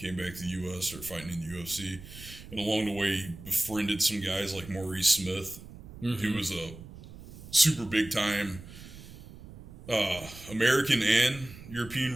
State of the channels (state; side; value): noise; right; rumble, 16 dB below the sound